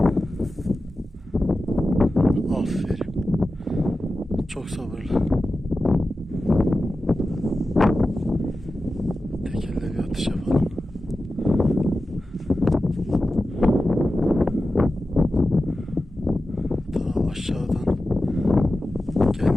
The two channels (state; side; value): normal; both; correlation 0.93